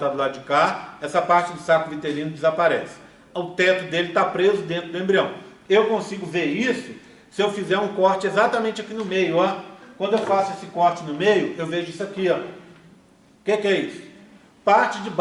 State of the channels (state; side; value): identical; both; correlation 1.00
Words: do lado de cá, essa parte do saco vitelino desaparece. O teto dele está preso dentro do embrião. Eu consigo ver isso se eu fizer um corte exatamente aqui no meio, ó. Quando eu faço esse corte no meio, eu vejo isso aqui, ó. O que é isso? Parte de